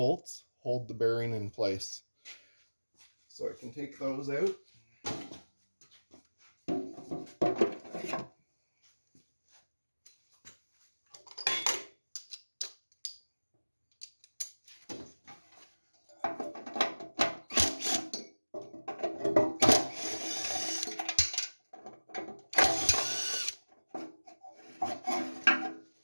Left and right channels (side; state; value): both; inverted; correlation -1.00